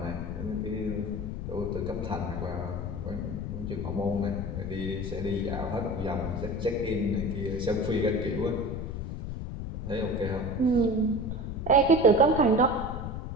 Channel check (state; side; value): noise; left; rumble, 5 dB below the sound